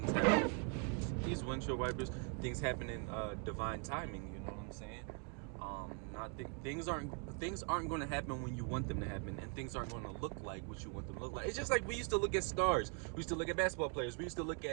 happen. These windshield wipers, things happen in divine timing. You know what I'm saying? Things aren't going to happen when you want them to happen, and things aren't going to look like what you want them to look like. It's just like we used to look at stars. We used to look at basketball players. We used to look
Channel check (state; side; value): quieter; left; 36.4 dB